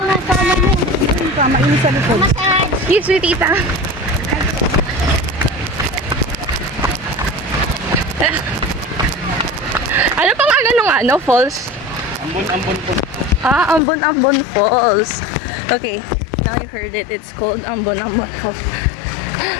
sa ano mo. Mainit sa likod. Yes, sweet tita. Ano pang ano falls? Ambon po. Ambon Falls. Okay, now you heard it. It's called Ambon Falls.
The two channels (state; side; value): drops out; right; at 13.8 s